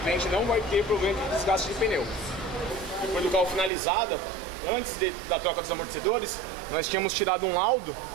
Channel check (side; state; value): left; drops out; at 3.7 s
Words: não vai ter problema de desgaste de pneu. Depois do carro finalizado, antes da troca dos amortecedores, nós tínhamos tirado um laudo